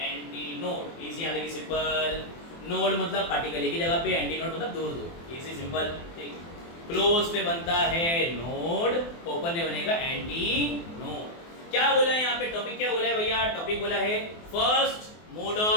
एंटी नोड। इजी यहाँ देखिए, सिंपल। नोड मतलब पार्टिकल एक ही जगह पे, एंटी नोड मतलब दूर दूर। इजी सिंपल, ठीक। क्लोज पे बनता है नोड, ओपन पे बनेगा एंटी नोड। क्या बोला है यहाँ पे? टॉपिक क्या बोला है भैया? टॉपिक बोला है फर्स्ट मोड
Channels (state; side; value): late; right; 24 ms